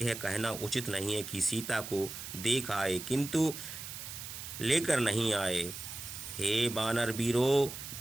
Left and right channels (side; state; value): right; noise; hiss, 9 dB below the sound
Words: यह कहना उचित नहीं है कि सीता को देख आए किंतु लेकर नहीं आए। हे वानर वीरों,